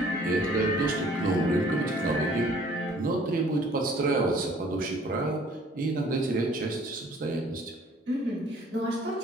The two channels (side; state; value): both; normal; correlation 0.56